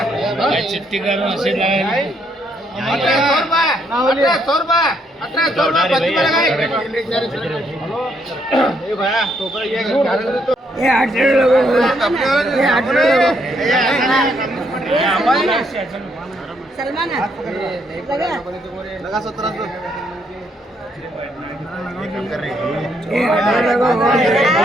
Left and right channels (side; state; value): both; normal; correlation 0.73